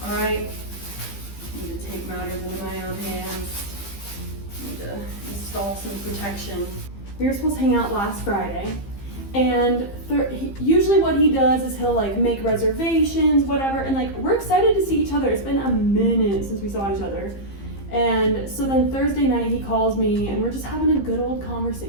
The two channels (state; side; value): late; right; 15 ms